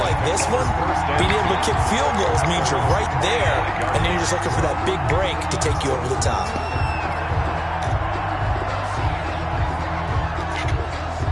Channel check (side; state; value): both; identical; correlation 1.00